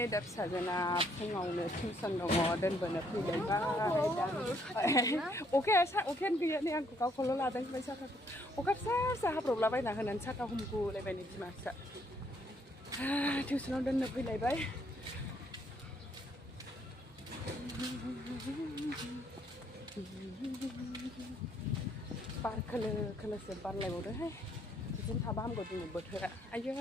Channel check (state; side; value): normal; both; correlation 0.69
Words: dah sajana pungau le tuition dong dan benar pilih Oke, oke gaya ni aku kau kalau ladang baca tak. Oke, saya problem bayi nak nan cakap humku lebih ni masa. Tuition dan pilih bayi. Park kalau sempat lewat deh. Chúng ta bám gột một bớt thôi ạ. Ai